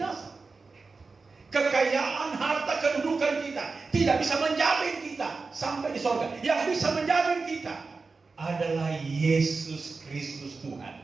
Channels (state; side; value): quieter; left; 4.2 dB